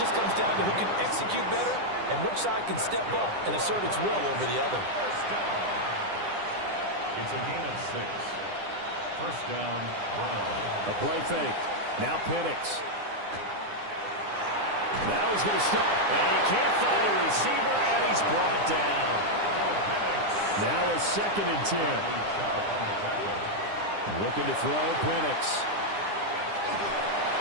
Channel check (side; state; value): left; late; 9.9 ms